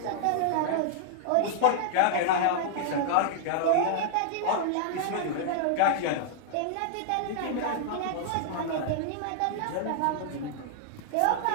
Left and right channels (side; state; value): both; different; correlation -0.01